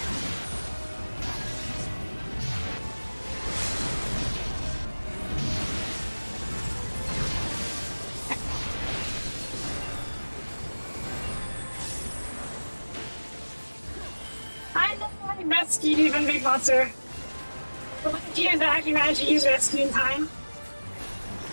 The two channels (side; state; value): both; inverted; correlation -1.00